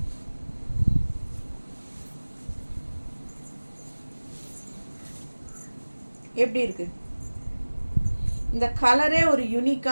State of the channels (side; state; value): both; inverted; correlation -1.00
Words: எப்படி இருக்குது இந்த கலரே? ஒரு